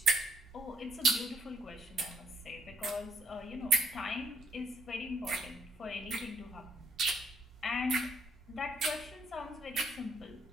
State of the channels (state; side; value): normal; both; correlation 0.71